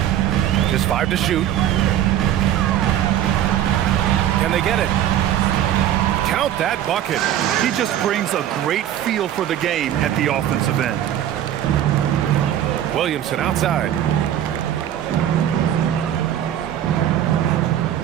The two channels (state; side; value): quieter; left; 11.3 dB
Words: Just 5 to shoot. Can they get it? Count that bucket. He just brings a great feel for the game at the offensive end. Williamson outside.